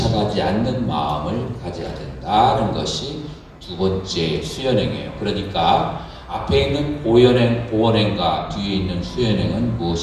않는 마음을 가져야 된다는 것이 두 번째 수연행이에요. 그러니까 앞에 있는 보원행과 뒤에 있는 수연행은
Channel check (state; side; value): identical; both; correlation 1.00